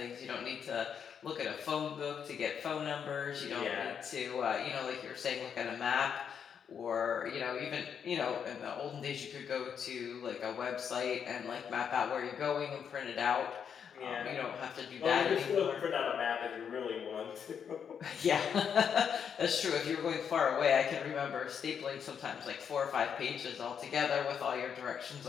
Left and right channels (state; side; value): quieter; right; 7.5 dB